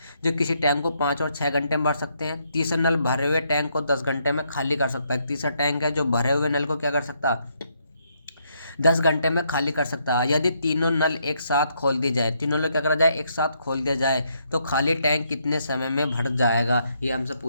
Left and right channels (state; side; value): inverted; both; correlation -0.75